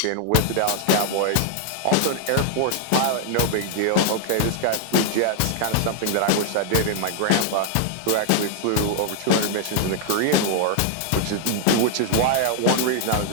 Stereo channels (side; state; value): both; different; correlation 0.00